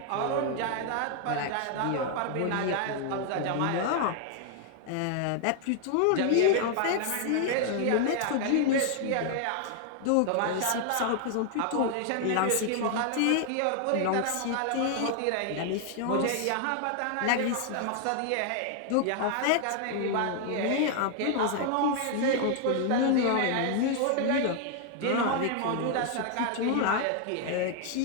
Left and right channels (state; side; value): different; both; correlation 0.00